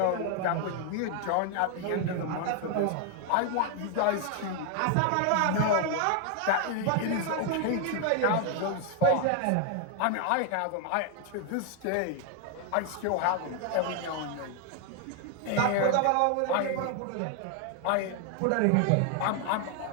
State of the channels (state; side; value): different; both; correlation 0.01